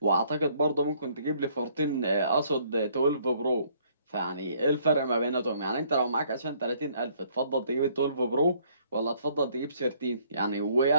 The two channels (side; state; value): both; inverted; correlation -0.64